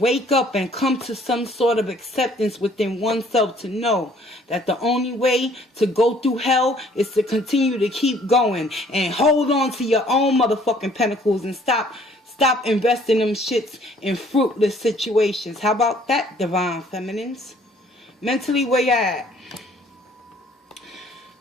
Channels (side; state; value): both; normal; correlation 0.59